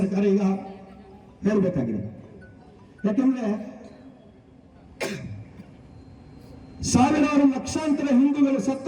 ಈಗ ಹೇಳಬೇಕಾಗಿದೆ. ಯಾಕೆಂದ್ರೆ ಸಾವಿರಾರು ಲಕ್ಷಾಂತರ ಹಿಂದೂಗಳು ಸತ್ತ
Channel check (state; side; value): identical; both; correlation 1.00